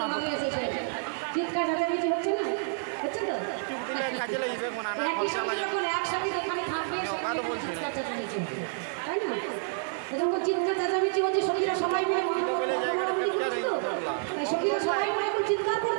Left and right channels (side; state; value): left; silent; 56 dB below the other